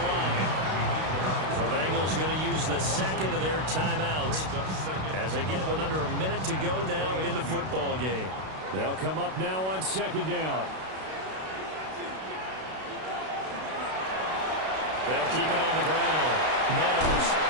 line. The Bengals going to use the 2nd of their timeouts as they get it with under a minute to go now in the football game. They'll come up now on 2nd down. They'll keep it on the ground. Meadows.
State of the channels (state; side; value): late; left; 32 ms